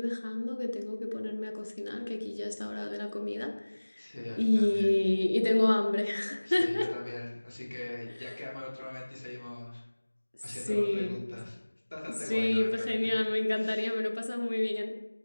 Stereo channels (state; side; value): inverted; both; correlation -1.00